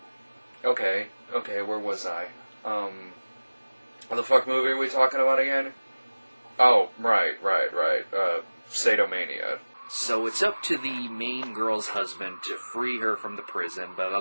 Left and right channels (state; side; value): inverted; both; correlation -1.00